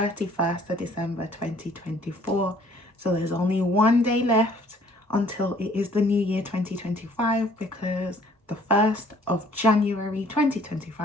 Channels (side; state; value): both; normal; correlation 0.58